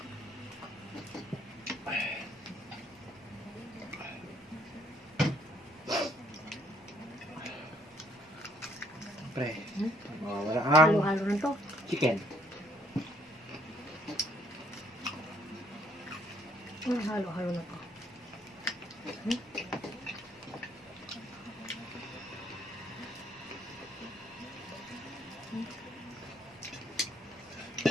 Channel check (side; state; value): both; normal; correlation 0.66